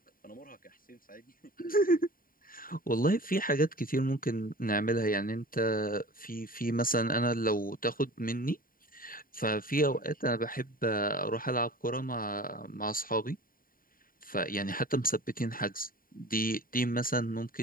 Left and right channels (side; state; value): right; late; 0.41 ms